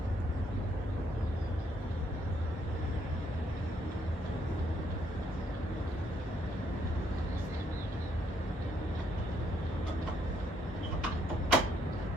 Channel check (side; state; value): both; normal; correlation 0.71